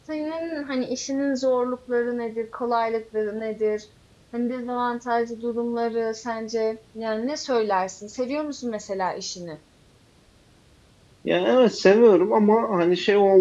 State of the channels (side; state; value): both; identical; correlation 1.00